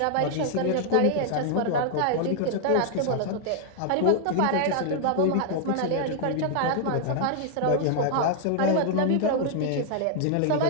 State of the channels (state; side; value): different; both; correlation -0.01